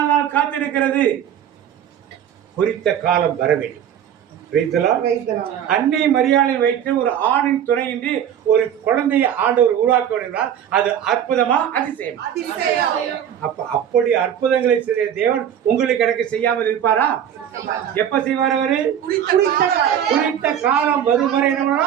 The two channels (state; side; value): quieter; left; 9.6 dB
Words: காத்திருக்கிறது? குறித்த காலம் வர வேண்டும். அன்னை மரியாதை வைத்து ஒரு ஆணின் துணையின்றி ஒரு குழந்தையை ஆண்டவர் உருவாக்க வேண்டால் அது அற்புதமா அதிசயம்? அப்ப அப்படி அற்புதங்களை செய்ய தேவன் உங்களுக்கு எனக்கு செய்யாமல் இருப்பாரா? எப்ப செய்வார் அவரு? குறித்த காலம் வரும் வரை என்ன